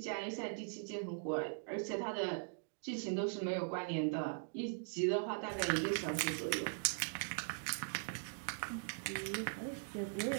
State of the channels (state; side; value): silent; left; digital silence